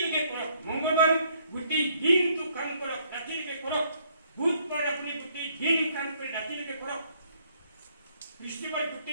কৰক। মংগলবাৰ গোটেই দিনটো কাম কৰক, ৰাতিলৈকে কৰক। বুধবাৰ আপুনি গোটেই দিন কাম কৰি ৰাতিলৈকে কৰক। বৃহস্পতিবাৰ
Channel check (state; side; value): inverted; both; correlation -0.67